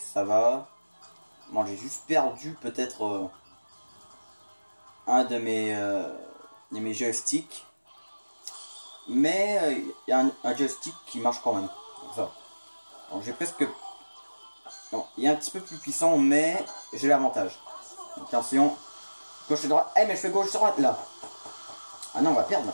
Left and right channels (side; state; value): both; inverted; correlation -1.00